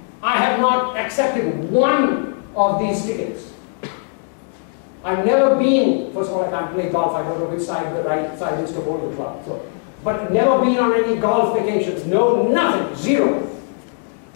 I have not accepted one of these tickets. I've never been, first of all, I can't play golf, I don't know which side the right side is to hold the club. So, but never been on any golf vacations. No, nothing, zero.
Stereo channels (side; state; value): right; silent; 55 dB below the other